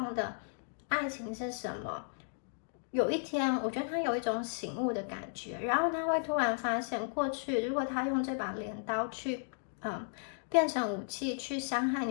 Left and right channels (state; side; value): silent; right; digital silence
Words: 的爱情是什么。有一天，我觉得他有一种醒悟的感觉，然后他会突然发现，过去如果他用这把镰刀去，变成武器去伤害